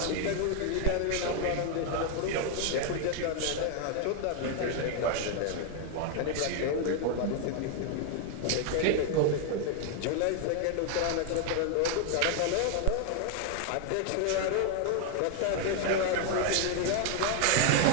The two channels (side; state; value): both; different; correlation 0.00